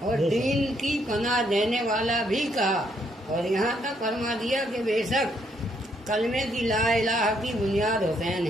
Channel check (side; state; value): both; normal; correlation 0.72